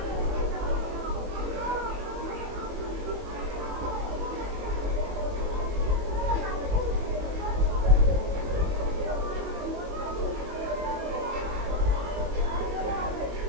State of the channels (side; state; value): left; late; 21 ms